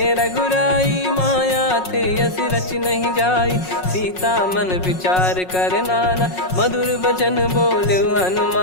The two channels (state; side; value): late; right; 5.5 ms